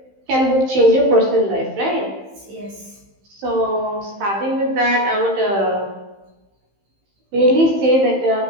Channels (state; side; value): late; left; 15 ms